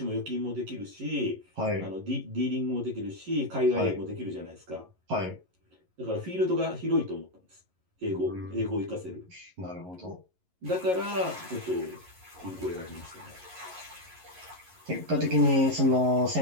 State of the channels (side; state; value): left; late; 11 ms